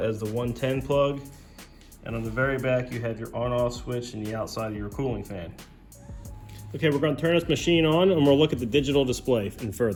the 110 plug. And on the very back, you have your on-off switch and the outside of your cooling fan. Okay, we're going to turn this machine on and we'll look at the digital display in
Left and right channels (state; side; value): identical; both; correlation 1.00